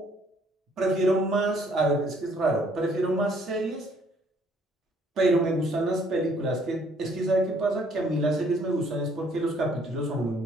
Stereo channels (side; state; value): both; normal; correlation 0.63